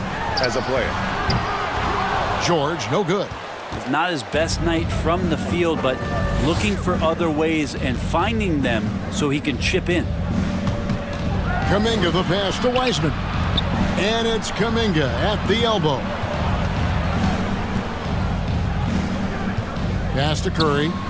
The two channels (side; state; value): both; identical; correlation 1.00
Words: as a player. George, no good. It's not his best night from the field, but looking for other ways and finding them so he can chip in. Kuminga the pass to Wiseman. And it's Kuminga at the elbow. Pass to Curry.